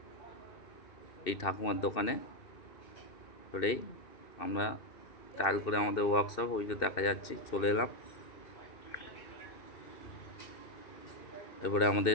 এই ঠাকুমার দোকানে। এই আমরা টাইল করে আমাদের ওয়ার্কশপ ওই যে দেখা যাচ্ছে চলে এলাম। এবারে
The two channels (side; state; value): right; late; 2.6 ms